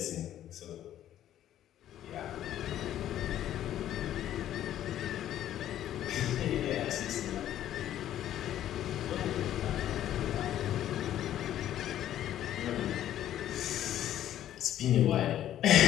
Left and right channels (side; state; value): right; quieter; 11.9 dB